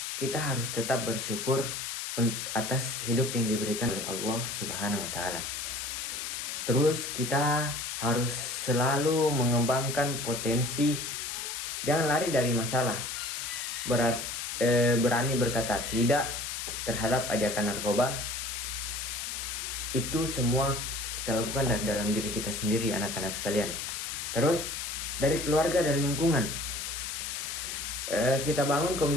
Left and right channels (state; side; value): noise; left; hiss, 4 dB below the sound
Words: kita harus tetap bersyukur atas hidup yang diberikan oleh Allah Subhanahu wa Ta'ala. Terus kita harus selalu mengembangkan potensi, jangan lari dari masalah. Berani berkata tidak terhadap ajakan narkoba. Itu semua kita lakukan dari dalam diri kita sendiri, anak-anak sekalian. Terus dari keluarga dan lingkungan, kita bangun